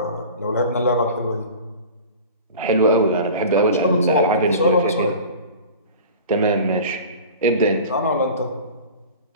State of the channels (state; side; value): inverted; both; correlation -0.39